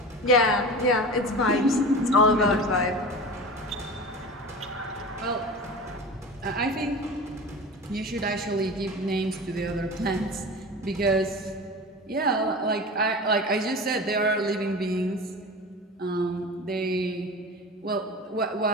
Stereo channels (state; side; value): normal; both; correlation 0.32